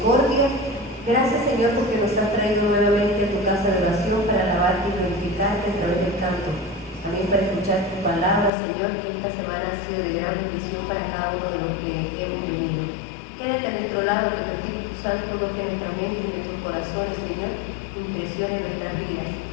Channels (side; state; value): right; drops out; at 8.5 s